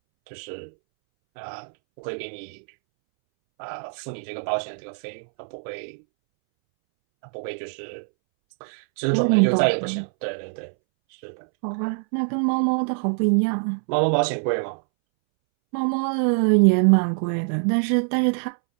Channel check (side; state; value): left; silent; 63 dB below the other